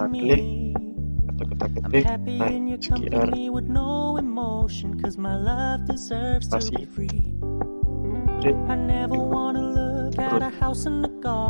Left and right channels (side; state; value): both; inverted; correlation -1.00